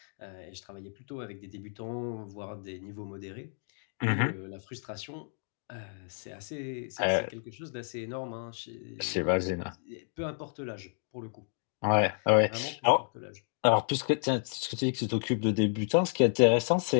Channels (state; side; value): silent; right; 57 dB below the other